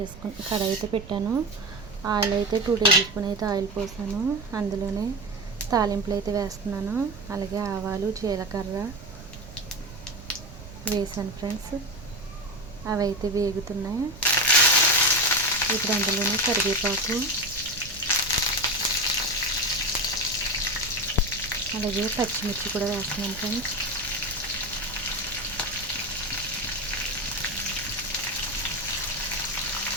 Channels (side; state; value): right; noise; rumble, 15 dB below the sound